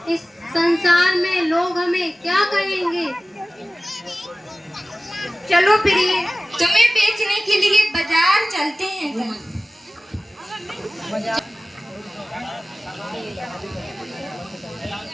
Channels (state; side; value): normal; both; correlation 0.97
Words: इस संसार में लोग हमें क्या कहेंगे? चलो प्रिय, तुम्हें बेचने के लिए बाजार चलते हैं।